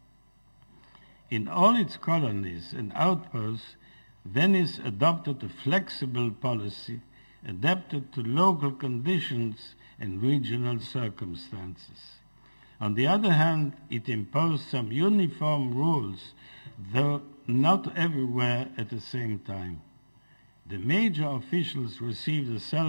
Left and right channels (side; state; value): both; inverted; correlation -1.00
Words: In all its colonies and outposts, Venice adopted a flexible policy adapted to local conditions and regional circumstances. On the other hand, it imposed some uniform rules, though not everywhere at the same time. The major officials received a